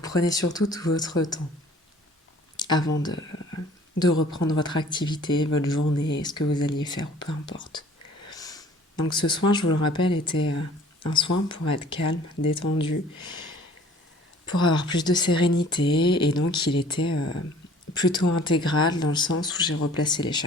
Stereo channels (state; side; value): normal; both; correlation 0.52